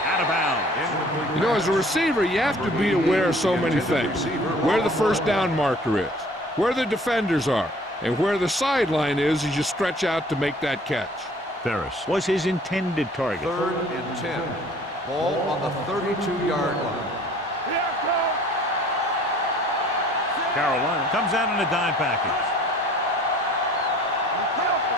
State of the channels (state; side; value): normal; both; correlation 0.52